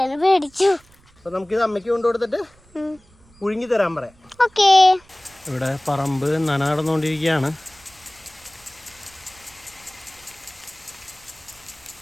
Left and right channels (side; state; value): right; noise; rumble, 29 dB below the sound